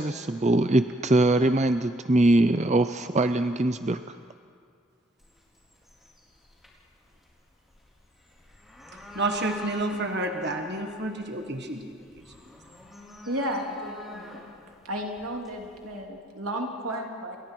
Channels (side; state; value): both; normal; correlation 0.66